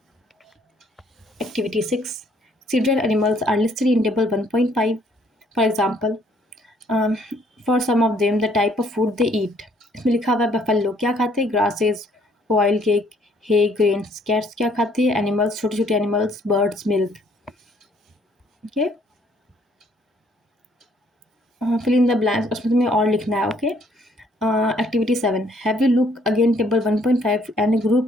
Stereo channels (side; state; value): both; normal; correlation 0.64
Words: Activity 6, several animals are listed in table 1.5, for example, for some of them the type of food they eat, इसमें लिखा हुआ है बफेलो क्या खाते हैं, grasses, oil cake, hay grains. Cats क्या खाते हैं, एनिमल्स, छोटे छोटे animals, birds, milk. Okay, fill in the blanks, उसमें तुम्हें और लिखना है। Okay, activity 7, have you look again table 1.5 and